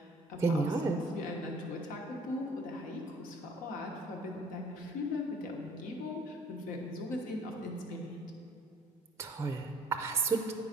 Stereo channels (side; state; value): both; normal; correlation 0.54